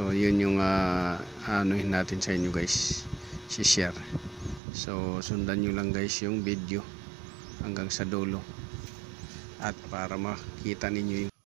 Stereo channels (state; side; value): drops out; left; at 4.6 s